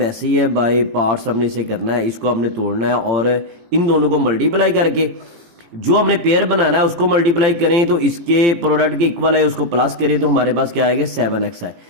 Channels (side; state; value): left; late; 17 ms